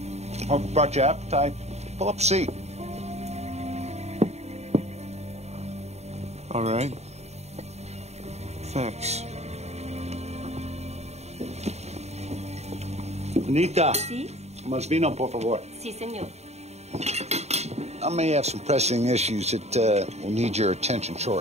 Hope I brought you appetite. Pull up a seat. All right. Thanks. Anita. Sí? Más vino, por favor. Sí, señor. I may have some pressing issues that will need your attention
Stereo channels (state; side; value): late; left; 0.32 ms